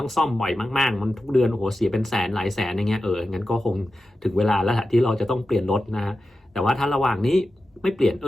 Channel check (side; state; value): both; normal; correlation 0.92